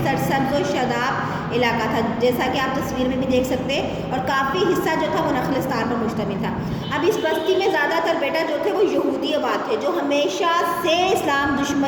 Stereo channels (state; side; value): identical; both; correlation 1.00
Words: سرسبز و شاداب علاقہ تھا، جیسا کہ آپ تصویر میں بھی دیکھ سکتے ہیں، اور کافی حصہ جو تھا وہ نخلستان پر مشتمل تھا۔ اب اس بستی میں زیادہ تر بیٹا جو تھے وہ یہودی آباد تھے، جو ہمیشہ سے اسلام